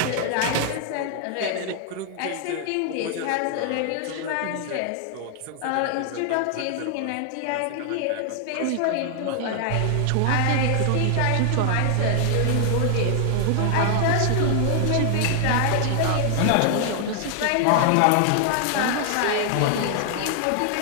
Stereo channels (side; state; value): both; different; correlation 0.00